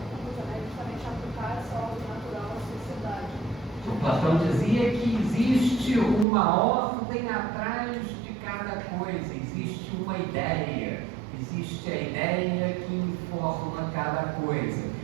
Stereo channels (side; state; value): left; drops out; at 6.2 s